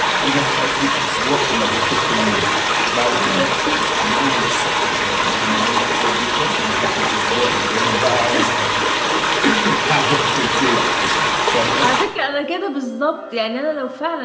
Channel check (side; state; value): both; identical; correlation 1.00